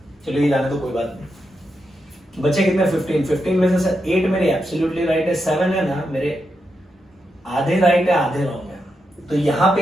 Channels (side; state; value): both; normal; correlation 0.85